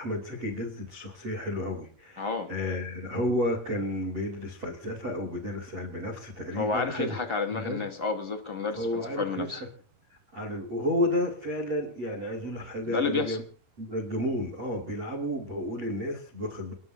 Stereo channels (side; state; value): left; late; 11 ms